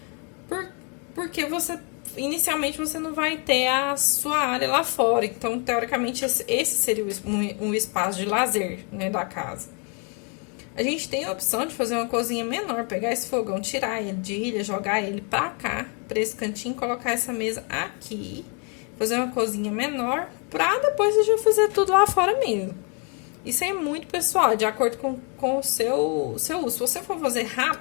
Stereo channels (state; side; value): quieter; right; 34.7 dB